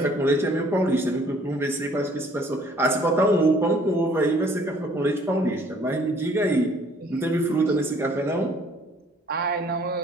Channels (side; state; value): both; normal; correlation 0.59